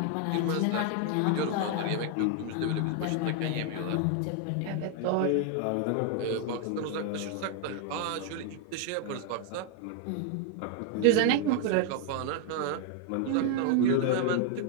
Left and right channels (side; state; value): both; different; correlation 0.00